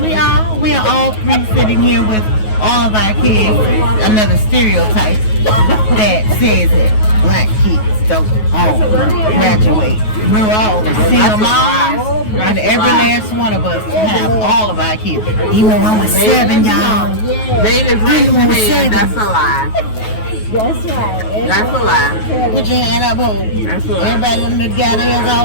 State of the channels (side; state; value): right; late; 9.3 ms